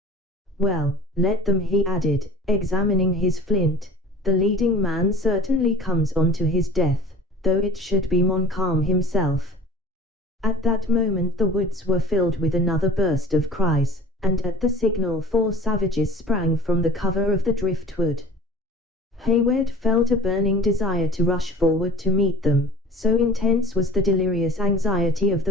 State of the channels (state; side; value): normal; both; correlation 0.44